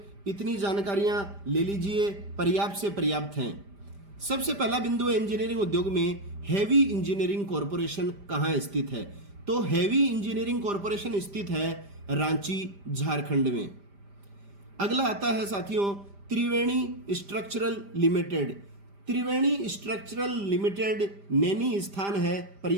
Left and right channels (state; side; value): late; left; 5.0 ms